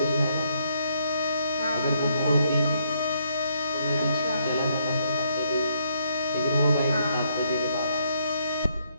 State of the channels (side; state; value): both; inverted; correlation -0.72